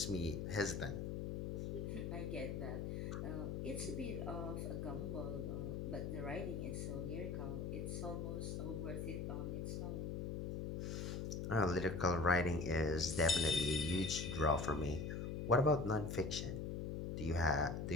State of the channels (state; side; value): noise; left; hum, 3 dB below the sound